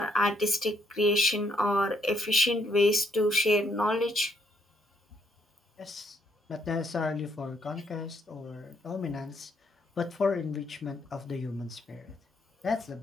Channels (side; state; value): both; normal; correlation 0.71